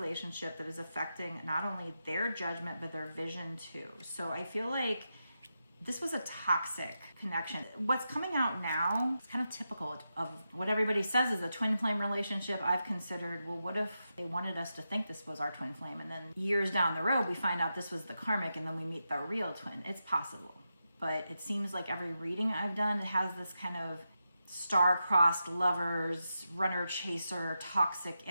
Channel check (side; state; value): both; inverted; correlation -0.88